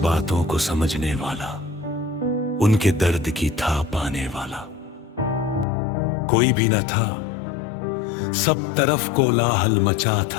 को समझने वाला, उनके दर्द की था पाने वाला कोई भी न था। सब तरफ कोलाहल मचा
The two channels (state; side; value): drops out; right; at 5.7 s